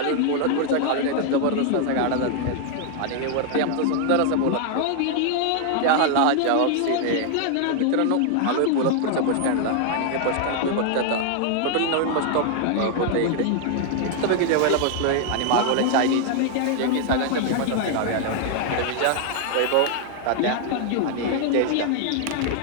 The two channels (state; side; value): different; both; correlation 0.00